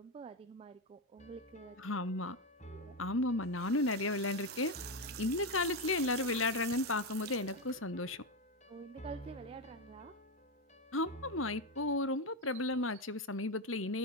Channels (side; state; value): both; normal; correlation 0.11